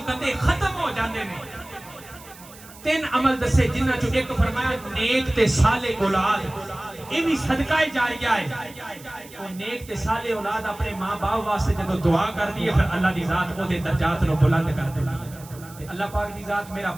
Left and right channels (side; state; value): right; noise; hiss, 20 dB below the sound